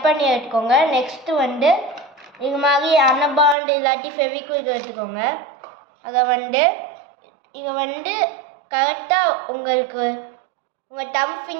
பண்ணி எடுத்துக்கோங்க. நெக்ஸ்ட் இது மாதிரி அன்னபாண்ட் இல்லாட்டி ஃபெவிக்விக் எடுத்துக்கோங்க. அதை இதை கரெக்டாக உங்கள் தம்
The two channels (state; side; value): drops out; left; at 3.6 s